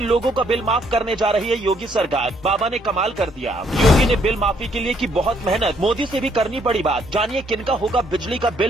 लोगों का बिल माफ करने जा रही है योगी सरकार। बाबा ने कमाल कर दिया। योगी ने बिल माफी के लिए की बहुत मेहनत, मोदी से भी करनी पड़ी बात। जानिए किनका होगा बिजली का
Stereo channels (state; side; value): normal; both; correlation 0.69